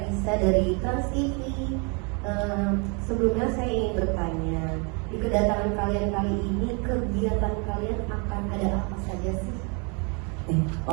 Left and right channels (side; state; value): left; quieter; 34.0 dB